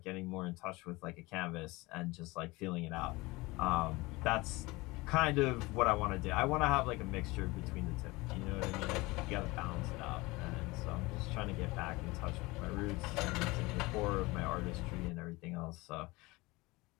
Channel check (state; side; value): quieter; right; 22.4 dB